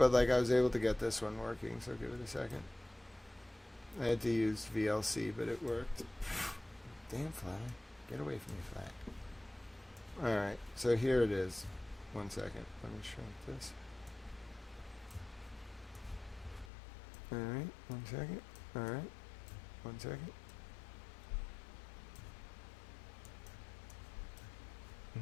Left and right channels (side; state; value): right; drops out; at 16.7 s